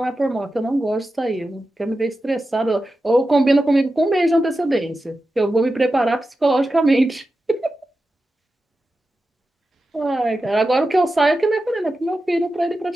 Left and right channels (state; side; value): normal; both; correlation 0.92